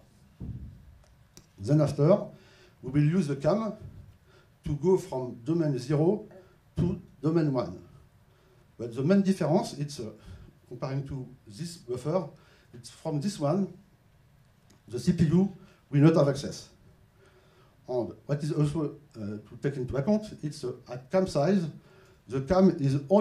Then after, we will use the CAM to go from domain 0 to domain 1. But the main difference, it's comparing to this buffer, it's from this one, the CPU will not have access. And what is also to take into account, it's at CAM size, the CAM is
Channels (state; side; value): identical; both; correlation 1.00